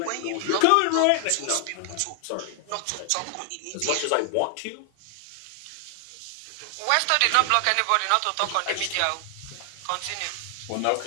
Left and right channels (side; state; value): both; different; correlation 0.00